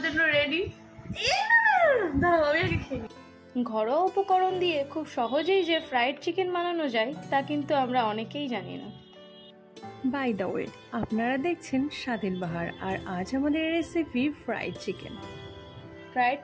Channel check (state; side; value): identical; both; correlation 1.00